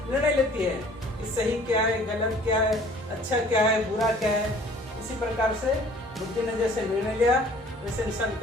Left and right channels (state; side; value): normal; both; correlation 0.52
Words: निर्णय लेती है कि सही क्या है, गलत क्या है, अच्छा क्या है, बुरा क्या है। इसी प्रकार से बुद्धि ने जैसे निर्णय लिया वैसे इंसान